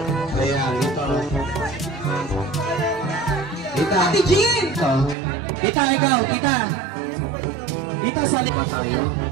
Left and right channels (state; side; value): drops out; left; at 5.2 s